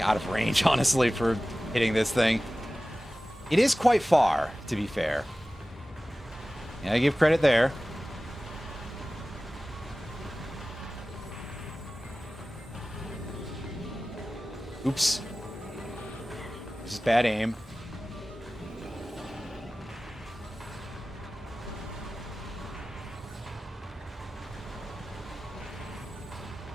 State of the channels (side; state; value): both; normal; correlation 0.96